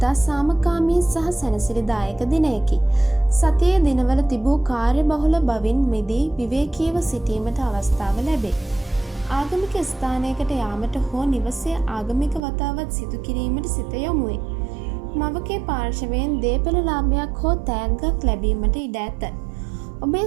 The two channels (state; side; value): drops out; left; at 12.4 s